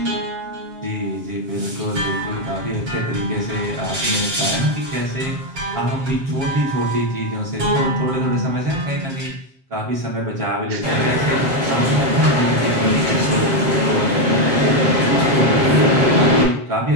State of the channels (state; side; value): late; left; 7.5 ms